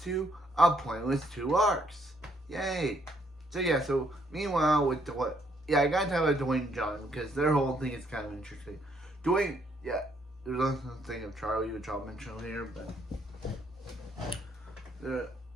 to a pointless 2 arcs. Yay! So meanwhile with Dwayne, I gotta talk about Dwayne and John because their whole thing is kind of interesting. Dwayne, there's also the thing of Charlie, which I'll mention later, but.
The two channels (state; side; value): normal; both; correlation 0.70